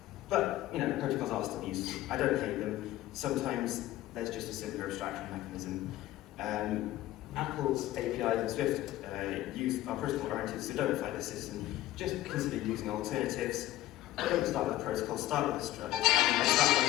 But, protocols are still useful. I don't hate them. Sometimes there's just a simpler abstraction mechanism. Apple's APIs and Swift are protocol-oriented, so don't fight the system. Just consider using alternatives. Don't start with a protocol, start with a struct. Start when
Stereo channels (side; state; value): right; quieter; 15.1 dB